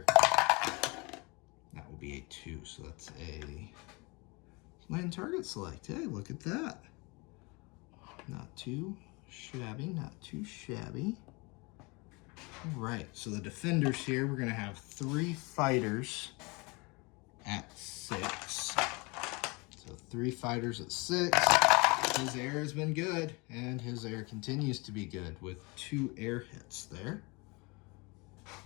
That will be a 2, so that's a land target select. Hey, look at that. Not too shabby, not too shabby. All right, so the defenders here, we're gonna have 3 fighters at 6. So 3 fighters at 6. His air has been good, and his air continues to be good with 2 air hits there.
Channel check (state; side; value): quieter; right; 27.6 dB